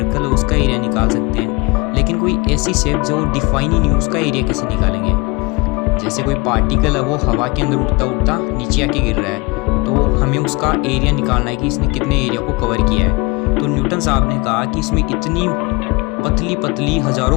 है उसका एरिया निकाल सकते हैं, लेकिन कोई ऐसी शेप जो डिफाइन ही नहीं उसका एरिया कैसे निकालेंगे। जैसे कोई पार्टिकल है वो हवा के अंदर उड़ता उड़ता नीचे आके गिर रहा है, तो हमें उसका एरिया निकालना है कि इसने कितने एरिया को कवर किया है। तो न्यूटन साहब ने कहा कि इसमें इतनी पतली पतली हज़ारों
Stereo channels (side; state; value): right; quieter; 26.1 dB